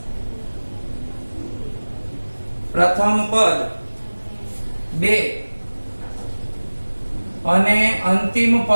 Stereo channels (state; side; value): inverted; both; correlation -1.00